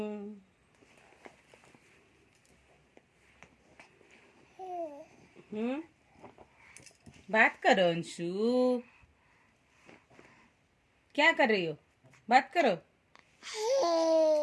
बात करो अंशु। क्या कर रही हो? बात करो।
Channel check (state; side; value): identical; both; correlation 1.00